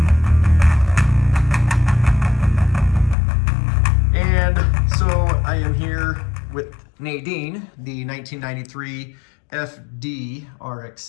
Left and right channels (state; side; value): drops out; right; at 3.2 s